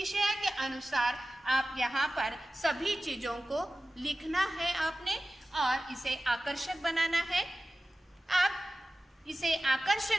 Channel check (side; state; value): both; normal; correlation 0.95